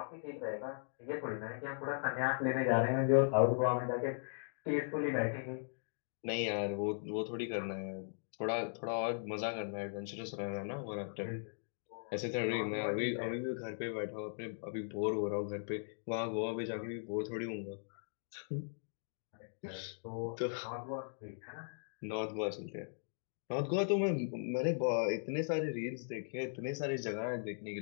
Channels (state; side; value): silent; right; digital silence